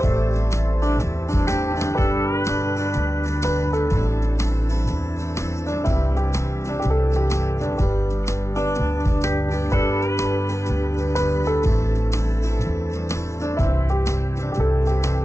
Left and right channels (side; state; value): right; late; 0.13 ms